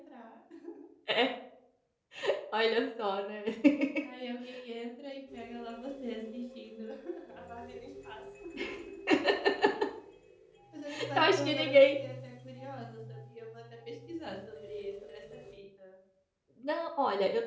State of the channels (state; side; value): identical; both; correlation 1.00